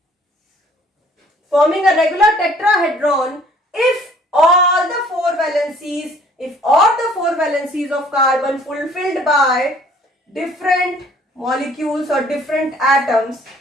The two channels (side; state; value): both; normal; correlation 0.57